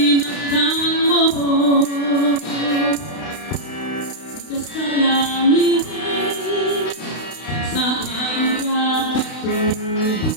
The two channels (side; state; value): right; late; 32 ms